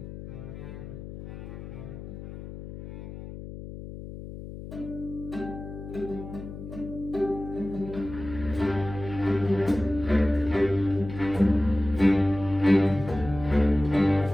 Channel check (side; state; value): left; noise; hum, 11 dB below the sound